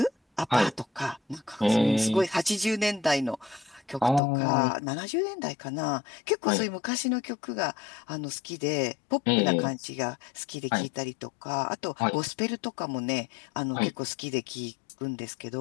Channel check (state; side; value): drops out; right; at 4.2 s